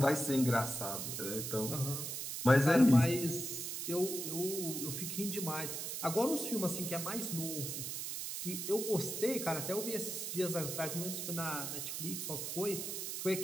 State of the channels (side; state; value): right; noise; hiss, 4 dB below the sound